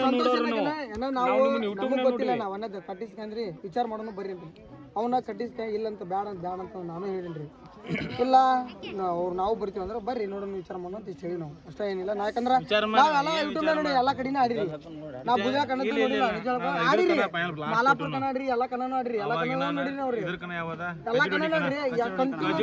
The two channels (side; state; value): both; identical; correlation 1.00